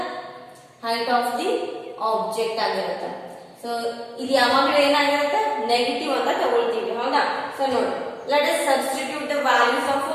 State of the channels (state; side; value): identical; both; correlation 1.00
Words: height of the object ಆಗಿರುತ್ತೆ. So ಇದು ಯಾವಾಗಲೂ ಏನಾಗಿರುತ್ತೆ negative ಅಂತ ತಗೊಳ್ತೀವಿ. ಹೌದಾ? So ನೋಡಿ let us substitute the values of